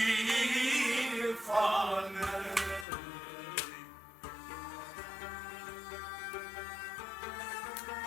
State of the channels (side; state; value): right; drops out; at 2.9 s